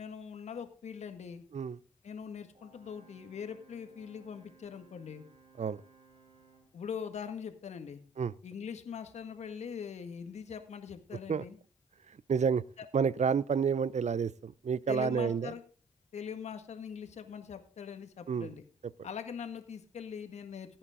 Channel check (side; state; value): left; quieter; 3.7 dB